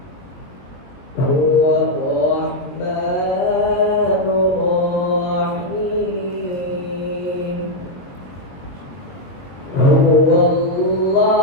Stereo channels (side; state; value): right; late; 22 ms